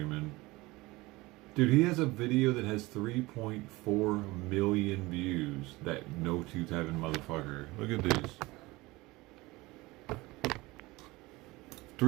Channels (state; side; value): quieter; left; 21.3 dB